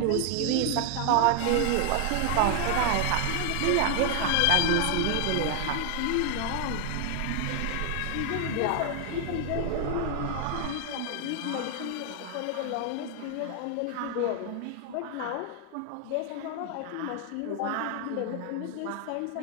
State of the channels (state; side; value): different; both; correlation 0.00